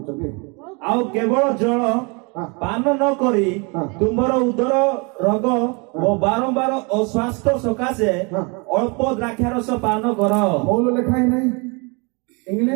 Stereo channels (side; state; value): left; quieter; 31.2 dB